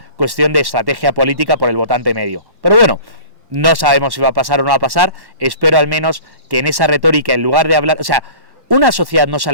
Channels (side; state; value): left; late; 1.1 ms